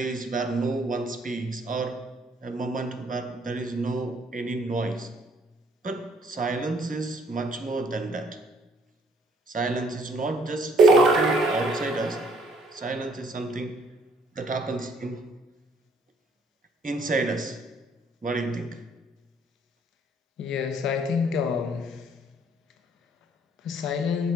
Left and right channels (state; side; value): normal; both; correlation 0.63